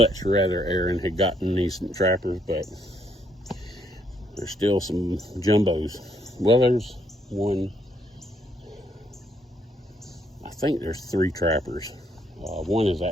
rather Aaron had gotten these trappers, but there's still some jumbos. Well, there's one, I think there's 3 trappers. One is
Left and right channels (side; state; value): both; normal; correlation 0.71